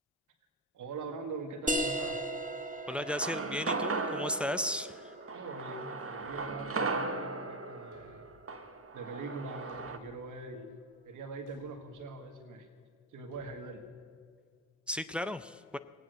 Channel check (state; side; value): normal; both; correlation 0.12